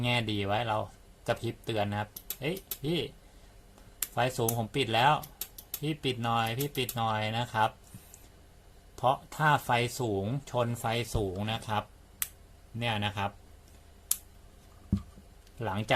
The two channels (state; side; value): identical; both; correlation 1.00